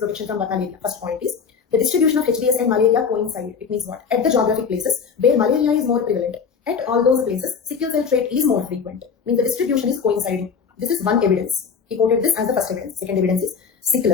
from malaria? First point is the distribution of HBS and malaria coincide. It means what? At the geographic places where malaria is more prevalent, at all those places, sickle cell trait is more frequent. Means the distribution is coinciding. This is one evidence. He quoted this as the first evidence. Second evidence is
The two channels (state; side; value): quieter; right; 6.1 dB